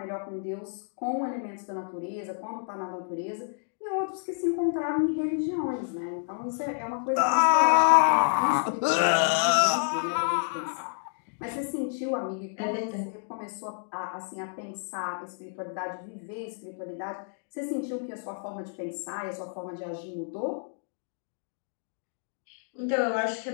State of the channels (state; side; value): silent; right; digital silence